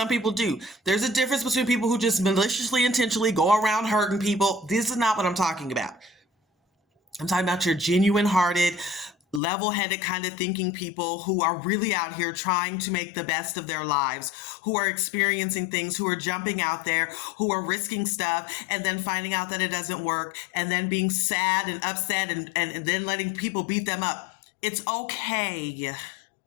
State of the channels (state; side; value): drops out; right; at 9.4 s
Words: people do. There's a difference between people who just maliciously, intentionally go around hurting people. This is not what I'm talking about. I'm talking about your genuine hearted, level headed kind of thinking people who are really out here trying to make the best of their lives, who are experiencing things, who are jumping out there, who are risking stuff and then finding out that it doesn't work and then being sad and upset and then letting people beat them up. It's okay.